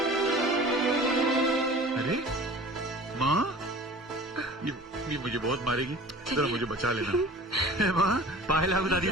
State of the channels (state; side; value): normal; both; correlation 0.43